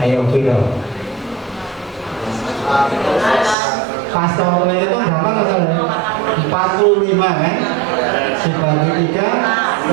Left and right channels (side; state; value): left; drops out; at 3.6 s